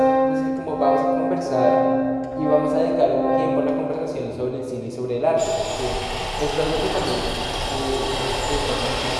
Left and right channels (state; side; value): identical; both; correlation 1.00